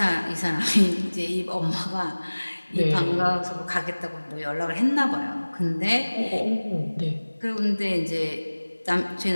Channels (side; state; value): both; inverted; correlation -1.00